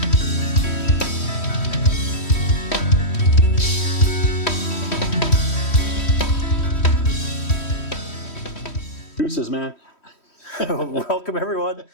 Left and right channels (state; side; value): late; right; 3.1 ms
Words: Deuces, man. Welcome, everyone,